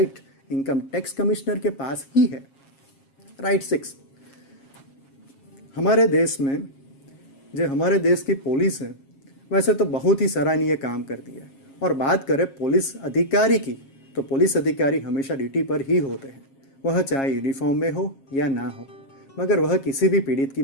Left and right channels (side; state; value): right; late; 7.3 ms